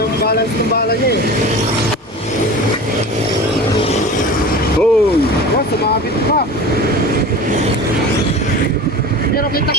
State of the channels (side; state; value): both; normal; correlation 0.35